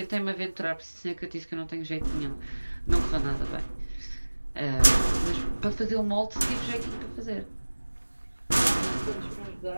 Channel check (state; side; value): inverted; both; correlation -1.00